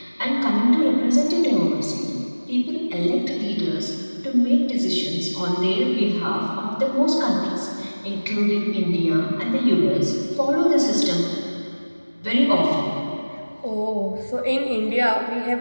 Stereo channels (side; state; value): both; inverted; correlation -1.00